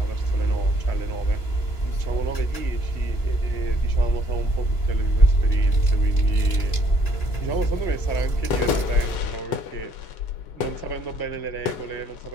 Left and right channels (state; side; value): late; right; 2.9 ms